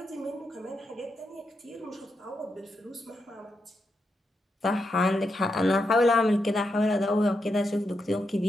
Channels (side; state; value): both; normal; correlation 0.84